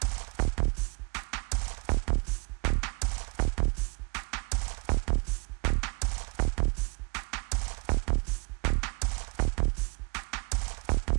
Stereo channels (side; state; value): left; quieter; 33.2 dB